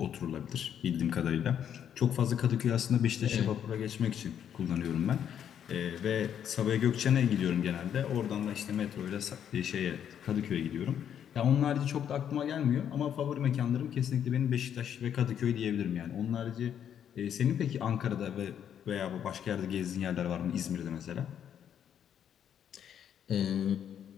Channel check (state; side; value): quieter; right; 9.1 dB